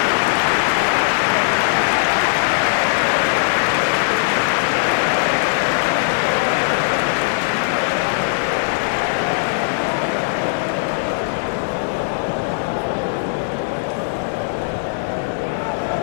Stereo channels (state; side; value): silent; right; digital silence